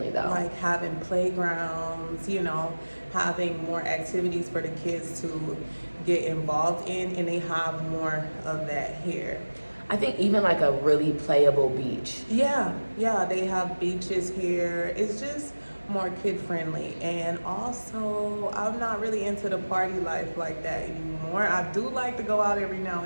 though? Like having playgrounds, having more activities for the kids to get involved in, and they have more of that here. I think even like a really playable beach. Yeah, they have beaches here. It's just more kid-friendly, and also I'm not really into the party life like that anymore. I do like to go out every now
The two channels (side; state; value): both; inverted; correlation -1.00